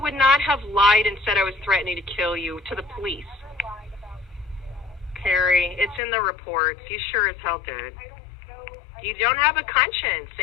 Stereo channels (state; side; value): drops out; right; at 6.0 s